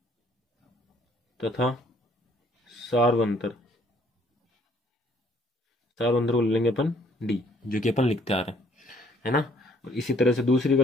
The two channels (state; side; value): normal; both; correlation 0.63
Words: तथा सार्वंतर सार्वंतर को ले लेंगे अपन डी, जो कि अपन लिखते आ रहे हैं, है ना। और इसी तरह से दूसरी का